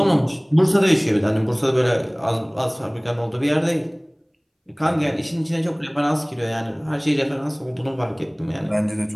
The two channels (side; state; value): both; identical; correlation 1.00